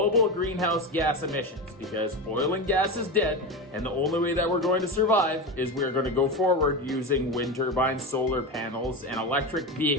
greenhouse gas emissions, because oil and gas is dead, and the only way that we're going to survive is we're going to go forward using wind turbines, solar panels, and electric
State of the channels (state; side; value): normal; both; correlation 0.20